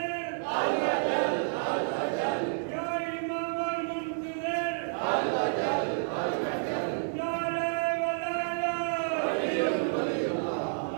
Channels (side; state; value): left; silent; digital silence